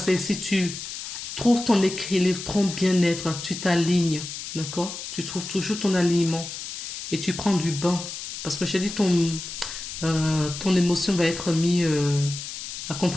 si tu trouves ton équilibre, ton bien-être, tu t'alignes, d'accord? Tu trouves toujours ton alignement et tu prends du bain. Parce que j'ai dit, ton émotion va être mise à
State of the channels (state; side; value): noise; left; hiss, 8 dB below the sound